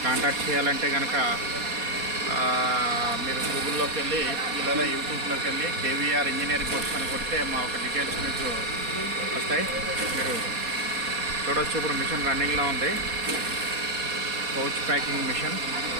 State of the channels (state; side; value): late; left; 4.2 ms